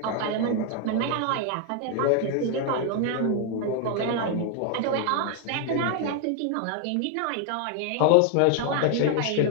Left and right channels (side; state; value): both; different; correlation 0.01